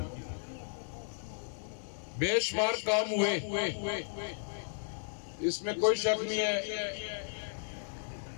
بے شمار کام ہوئے، اس میں کوئی شک نہیں ہے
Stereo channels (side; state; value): right; silent; digital silence